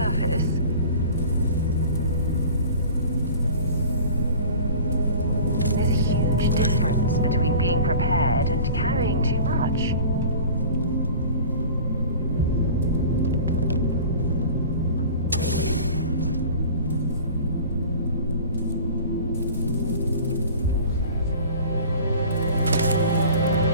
There's a huge difference between being prepared and carrying too much.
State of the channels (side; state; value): both; inverted; correlation -0.42